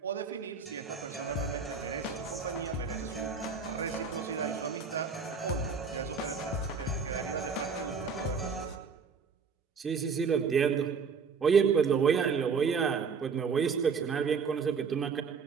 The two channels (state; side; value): quieter; left; 5.5 dB